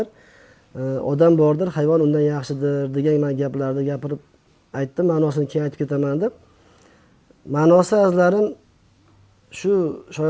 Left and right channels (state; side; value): identical; both; correlation 1.00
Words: Odam bordir, hayvon undan yaxshidir degan men gaplarni gapirib aytdim. Ma'nosini keyin aytib ketaman deb. Ma'nosi azlarim shu